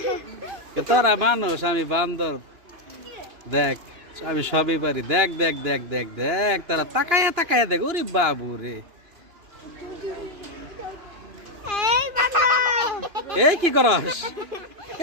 তোরা মানুষ, আমি বান্দর, দেখ আমি সবই পারি, দেখ দেখ দেখ দেখ দেখ, তারা তাকায়া তাকায়া দেখ। ওরে বাবু রে, এই কি করস?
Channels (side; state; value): left; late; 2.9 ms